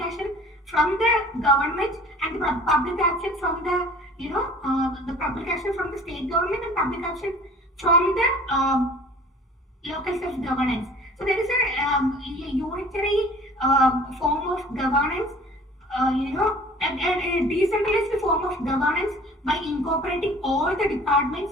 from the government and the public action from the public action from the state government and public action from the local self-governance. So there is a unitary form of governance, a decentralized form of governance by incorporating all the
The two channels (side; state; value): both; normal; correlation 0.47